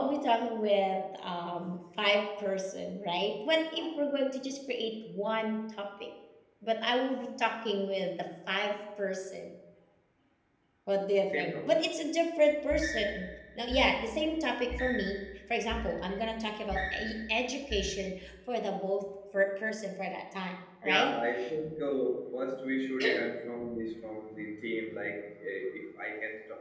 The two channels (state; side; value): identical; both; correlation 1.00